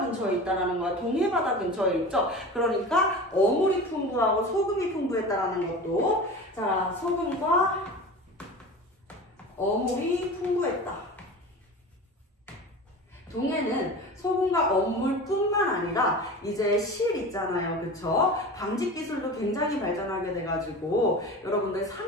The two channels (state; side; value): normal; both; correlation 0.33